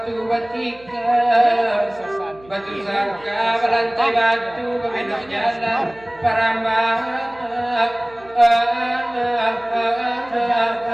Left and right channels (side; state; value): right; noise; hum, 25 dB below the sound